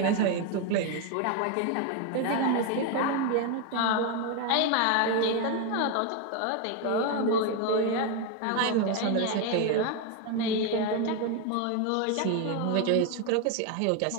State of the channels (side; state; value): both; different; correlation 0.01